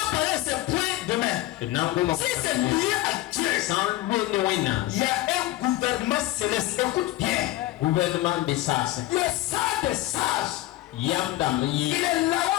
parler de ces points demain. Si c'est lié à Dieu, san le ne wena il y a un gouvernement céleste. Écoute bien. gouvernement de sas Le sage des sages, yam il yi est là.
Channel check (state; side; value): quieter; right; 16.2 dB